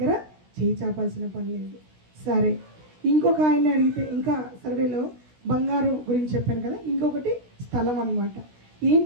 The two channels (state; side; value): late; left; 16 ms